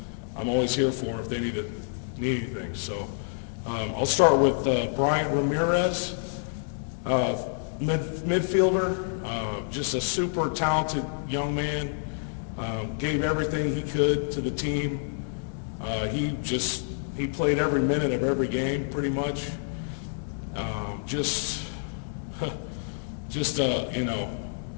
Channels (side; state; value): right; silent; digital silence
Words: I'm always here for them if they need anything. So I'll start with Bryant Ramirez, midfielder, just a super talented young man, gave everything he could to the team. He played every minute of every game pretty much.